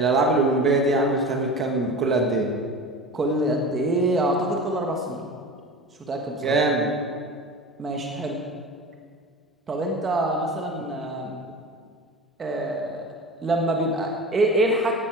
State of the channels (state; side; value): normal; both; correlation 0.33